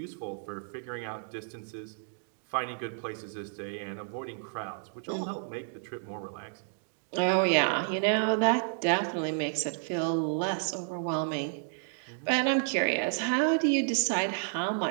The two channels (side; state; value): left; silent; digital silence